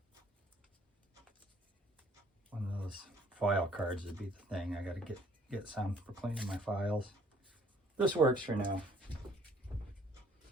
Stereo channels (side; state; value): both; normal; correlation 0.60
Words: One of those file cards would be the thing. I got to get some for cleaning my files. This works for now.